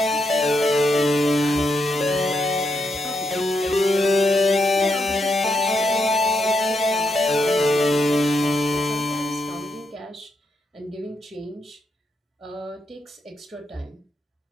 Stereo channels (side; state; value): both; normal; correlation 0.81